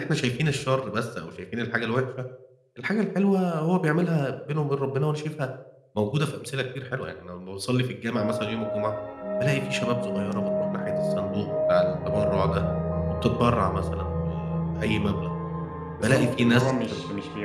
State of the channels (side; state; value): both; identical; correlation 1.00